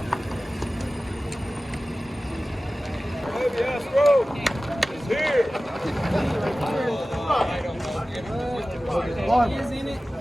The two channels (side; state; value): both; normal; correlation 0.96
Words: Yes, bro. It's here.